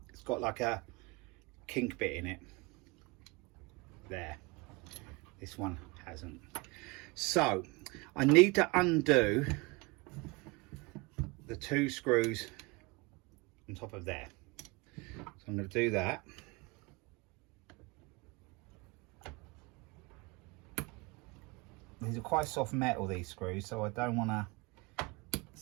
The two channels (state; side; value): quieter; left; 25.6 dB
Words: It's got like a kink bit in it there. This one hasn't. So I need to undo the 2 screws on top of there. So I'm going to do that. These are quite soft metal, these screws, so I don't want to